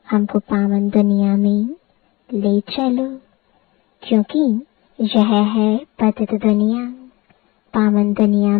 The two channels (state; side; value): quieter; right; 22.3 dB